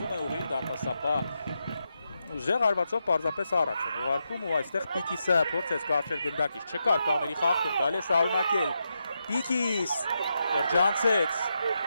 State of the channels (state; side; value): inverted; both; correlation -0.85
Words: է ուղիղ դարպասապահ Ուժեղ հարվածով պարզապես առաջ են ուղարկում ու այստեղ Պիկիսը փորձեց կարճել գնդակից չկար կաների խախտում, կարելի է շարունակել Պիկիս շրջանցեց